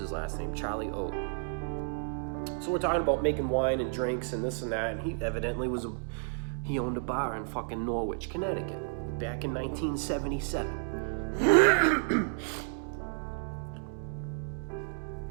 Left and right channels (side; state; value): left; silent; digital silence